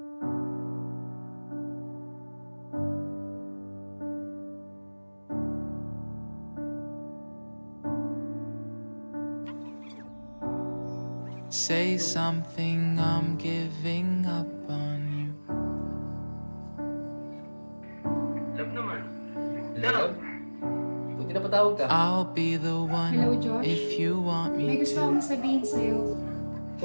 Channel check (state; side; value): inverted; both; correlation -1.00